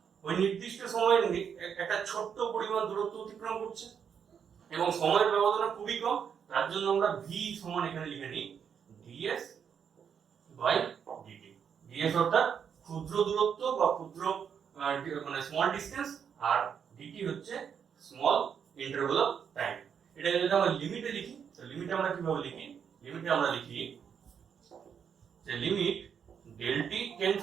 ওই নির্দিষ্ট সময়ের একটা ছোট্ট পরিমাণ দূরত্ব অতিক্রম করছে এবং সময়ের ব্যবধান খুবই কম, তার জন্য আমরা v সমান এখানে লিখে নিই ds বাই dt। ds অর্থাৎ ক্ষুদ্র দূরত্ব বা ক্ষুদ্র মানে স্মল ডিসটেন্স, আর dt হচ্ছে স্মল ইন্টারভাল অফ টাইম। এটা যদি আমরা লিমিটে লিখি, তো লিমিটে আমরা কিভাবে লিখি, লিমিটে আমরা লিখি যে limit del t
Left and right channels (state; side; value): quieter; left; 7.5 dB